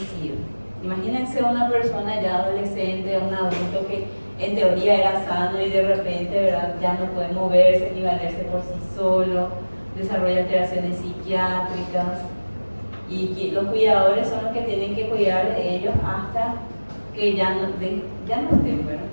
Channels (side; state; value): both; inverted; correlation -1.00